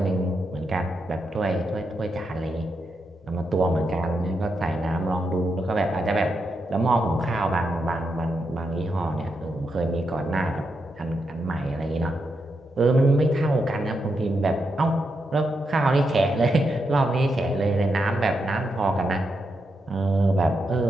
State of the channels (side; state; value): both; normal; correlation 0.84